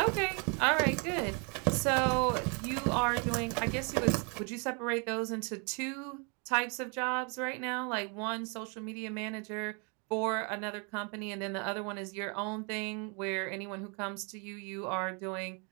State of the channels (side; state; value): left; quieter; 35.0 dB